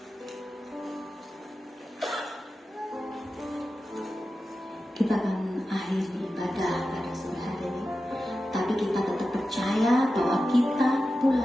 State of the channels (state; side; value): normal; both; correlation 0.92